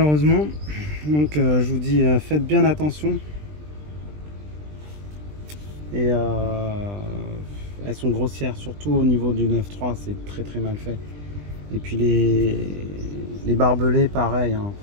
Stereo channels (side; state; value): left; late; 20 ms